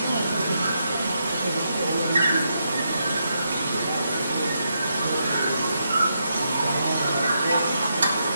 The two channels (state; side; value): inverted; both; correlation -0.81